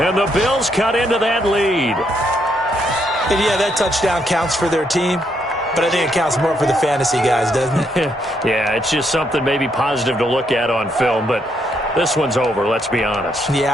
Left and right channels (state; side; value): normal; both; correlation 0.75